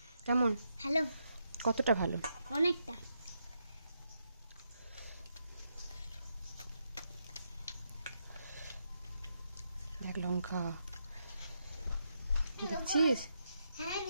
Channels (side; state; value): both; inverted; correlation -0.81